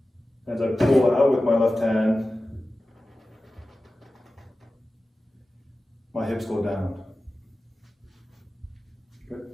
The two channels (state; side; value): normal; both; correlation 0.95